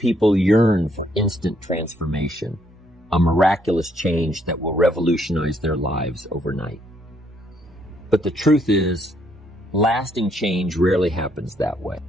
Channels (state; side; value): normal; both; correlation 0.71